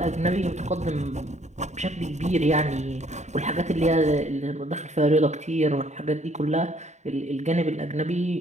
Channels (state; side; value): late; left; 0.34 ms